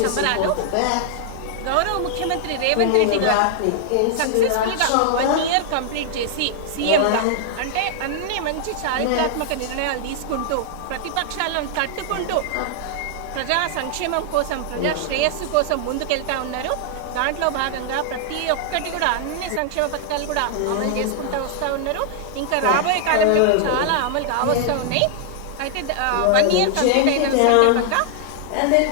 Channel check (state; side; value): different; both; correlation -0.01